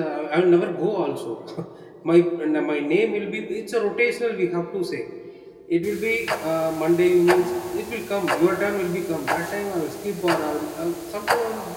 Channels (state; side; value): identical; both; correlation 1.00